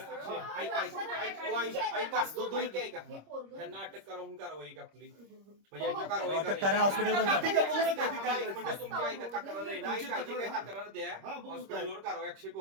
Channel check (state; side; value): late; left; 26 ms